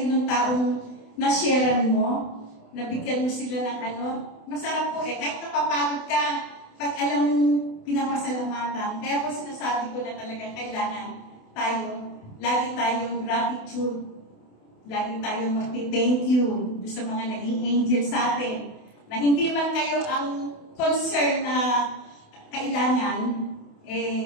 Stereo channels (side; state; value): right; late; 28 ms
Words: ng taong na-sharean mo, nabigyan mo sila ng masarap po kahit napapagod ka, pag alam mong pinapasalamatan. Kaya po sinasabi ko na talaga kailangan lagi tayong gratitude, lagi tayong magti-thank you sa mga naging angel sa atin, na hindi man kayo ang concern na kailangan,